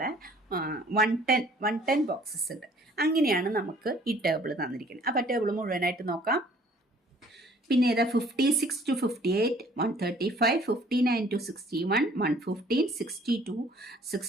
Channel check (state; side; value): normal; both; correlation 0.56